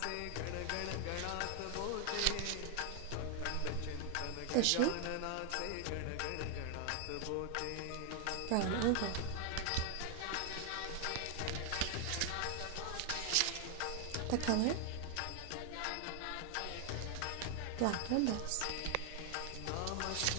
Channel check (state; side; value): different; both; correlation 0.00